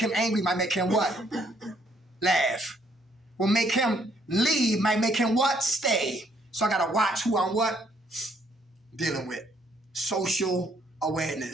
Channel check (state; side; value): normal; both; correlation 0.67